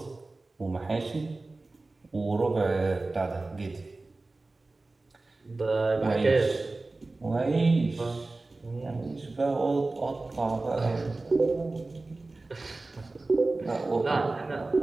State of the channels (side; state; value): left; quieter; 3.3 dB